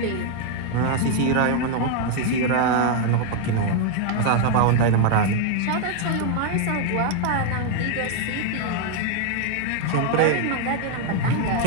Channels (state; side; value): different; both; correlation 0.01